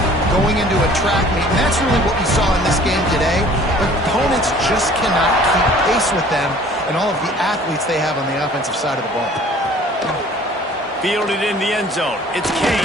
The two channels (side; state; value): both; normal; correlation 0.51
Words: going into a track meet, and that's really what we saw in this game today. But opponents just cannot keep pace with them and all of the athletes they have on the offensive side of the ball. Fielded in the end zone. It's